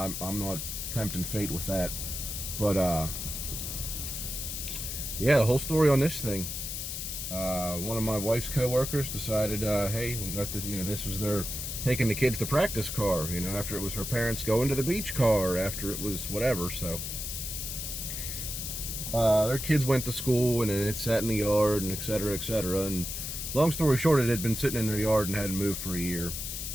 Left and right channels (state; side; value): noise; left; hiss, 5 dB below the sound